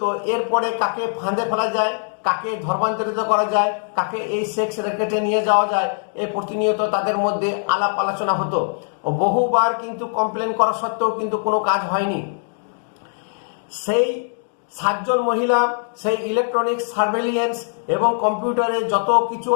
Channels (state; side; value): silent; right; 65 dB below the other